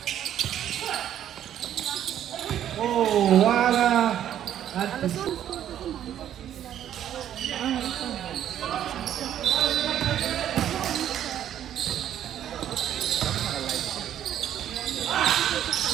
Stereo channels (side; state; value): left; quieter; 10.8 dB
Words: Oh, wala. At